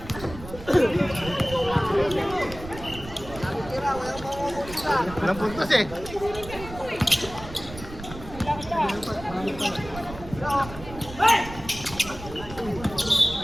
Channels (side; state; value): right; noise; rumble, 13 dB below the sound